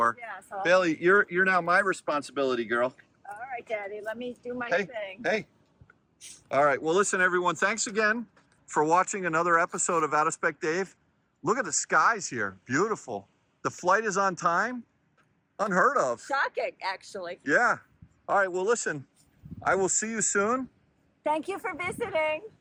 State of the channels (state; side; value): identical; both; correlation 1.00